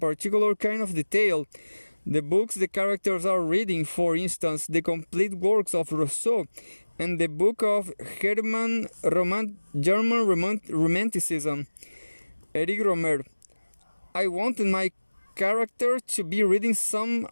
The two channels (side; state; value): both; inverted; correlation -1.00